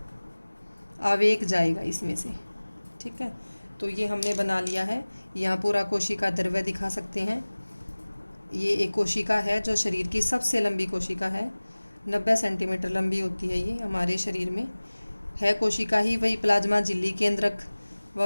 आवेग जाएगा इसमें से। ठीक है, तो ये हमने बना लिया है। यहाँ पूरा कोशिका द्रव्य दिखा सकते हैं। ये एक कोशिका है जो शरीर की सबसे लंबी कोशिका है। 90 सेंटीमीटर लंबी होती है ये हमारे शरीर में है कोशिका ही। वही प्लाज्मा झिल्ली, केंद्रक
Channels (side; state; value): both; inverted; correlation -1.00